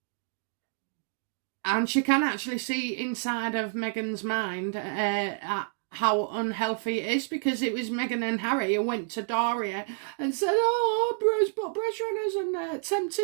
she can actually see inside of Meghan's mind how unhealthy it is, because it was Meghan and Harry who went to Doria and said, oh, Oprah's put pressure on us and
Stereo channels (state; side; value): silent; left; 59 dB below the other